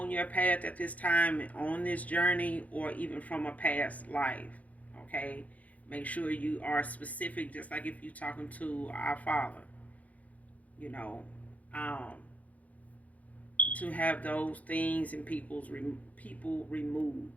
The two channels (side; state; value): right; late; 0.071 ms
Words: your path at this time, on this journey, or even from a past life, okay. Make sure you are specific, just like if you're talking to our Father, you know, um, to have those things and people